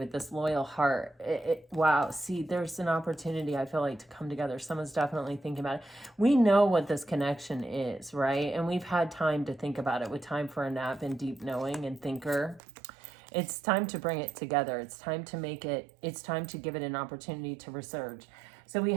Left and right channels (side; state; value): left; drops out; at 12.6 s